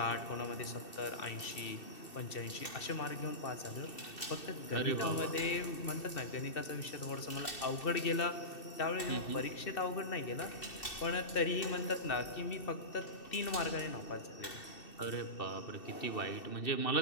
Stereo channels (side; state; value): right; late; 2.7 ms